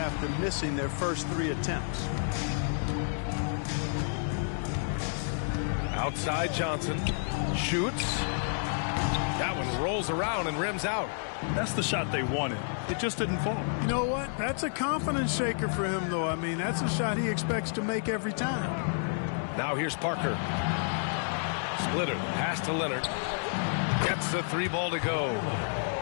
missing their first 3 attempts. Outside Johnson. Shoots. That one rolls around and rims out. That's the shot they wanted. It just didn't fall. You know what? That's a confidence shaker for him, though. I mean, that's a shot he expects to make every time. Now here's Parker. Splitter. Pass to Leonard. Gets the 3 ball to go.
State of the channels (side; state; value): right; silent; digital silence